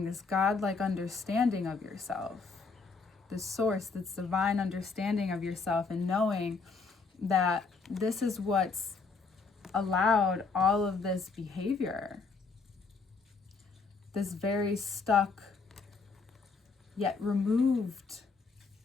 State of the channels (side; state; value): right; quieter; 4.5 dB